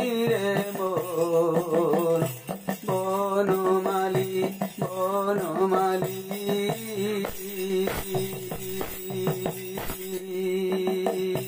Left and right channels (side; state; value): both; identical; correlation 1.00